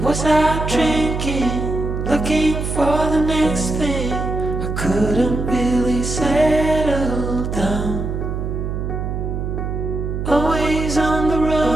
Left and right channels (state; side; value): noise; right; hum, 3 dB below the sound